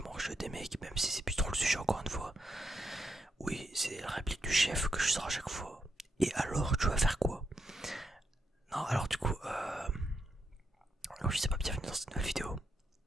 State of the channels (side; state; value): both; normal; correlation 0.81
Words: mangent des mecs, même si c'est plus trop le sujet encore une fois. Oui, c'est la réplique du chef que je sors à chaque fois. Et alors, tu vas faire quoi? Non, alors du coup, je sais pas, bienvenue dans cette nouvelle vidéo.